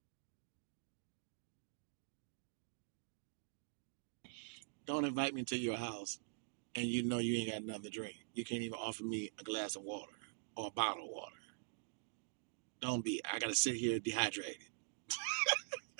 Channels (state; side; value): silent; left; digital silence